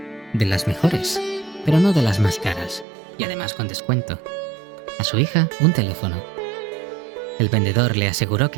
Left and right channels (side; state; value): left; drops out; at 2.9 s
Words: de las mejores, pero no de las más caras, y además con descuento. A su hija, un teléfono. El vendedor le aseguró